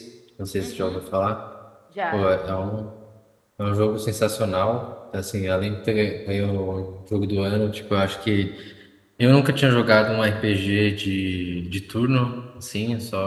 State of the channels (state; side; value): identical; both; correlation 1.00